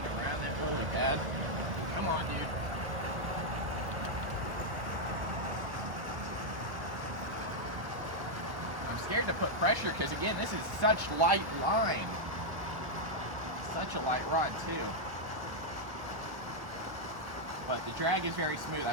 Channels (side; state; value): left; late; 1.1 ms